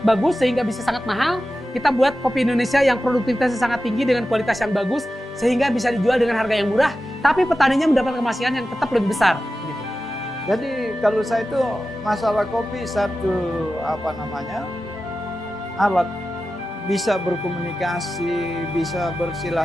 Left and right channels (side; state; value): both; normal; correlation 0.93